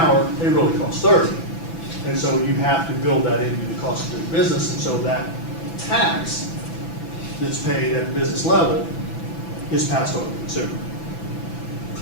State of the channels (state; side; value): late; right; 6.0 ms